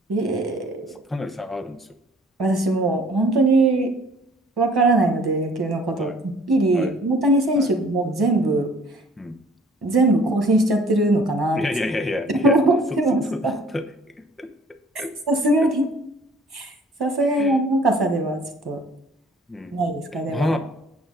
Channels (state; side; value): normal; both; correlation 0.54